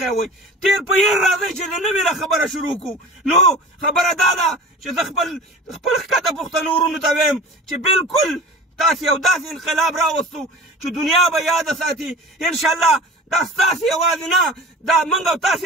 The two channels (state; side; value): normal; both; correlation 0.38